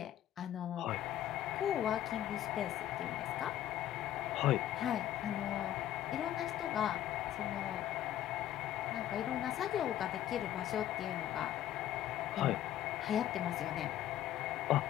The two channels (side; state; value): right; quieter; 12.2 dB